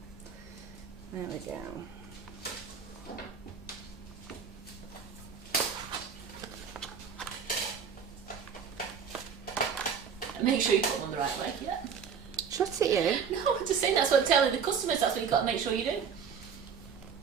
There we go. Make sure you put them on the right way. Yeah. Shut it, you. No, I'm just saying that's what I'm telling the customers. That's what you've got to make sure you do.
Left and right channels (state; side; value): quieter; left; 6.7 dB